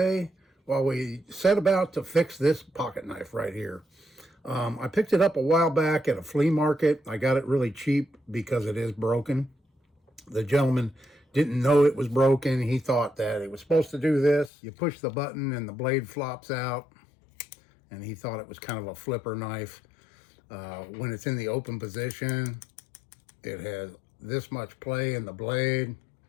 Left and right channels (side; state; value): right; drops out; at 14.5 s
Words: while we set about to fix this pocket knife right here. I picked it up a while back at a flea market. I got it really cheap because it is broken. The gentleman didn't know it was broken. He thought that it was supposed to do this. You push the button and the blade flops out, and he thought it was kind of a flipper knife. When it's in the open position, it has this much play in the blade,